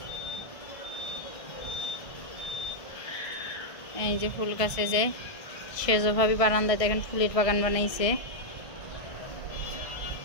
এই যে ফুল গাছে যে সেজভাবে বারান্দায় দেখেন ফুলের বাগান বানাইছে।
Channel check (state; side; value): late; right; 1.5 ms